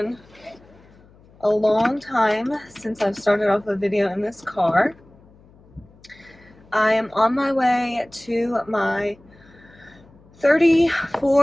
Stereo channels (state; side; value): noise; left; hum, 27 dB below the sound